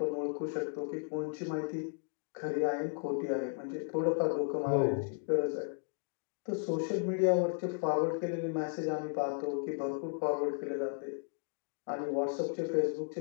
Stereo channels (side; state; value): right; silent; 55 dB below the other